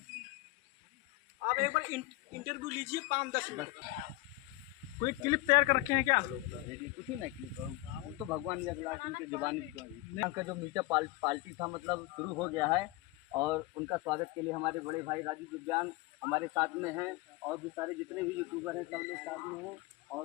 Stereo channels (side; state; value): right; quieter; 18.9 dB